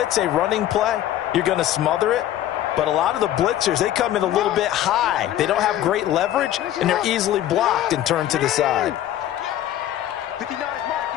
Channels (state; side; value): quieter; right; 12.4 dB